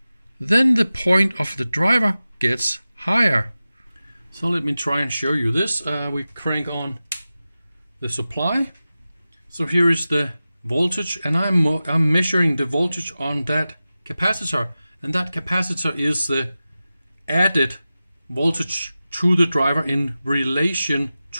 Then the point of the driver gets higher. So let me try and show you this. We crank on the supply. So here is the voltage, and I'm measuring the voltage on that capacitor, and that capacitor is the added voltage to the driver in relation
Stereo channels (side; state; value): both; inverted; correlation -0.95